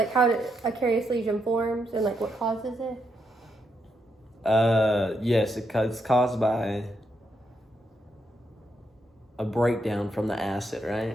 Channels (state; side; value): normal; both; correlation 0.80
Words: how a carious lesion forms and like what causes it? Yes, it's caused by a breakdown from the acid,